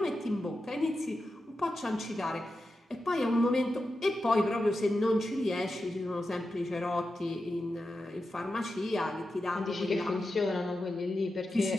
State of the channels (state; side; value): normal; both; correlation 0.90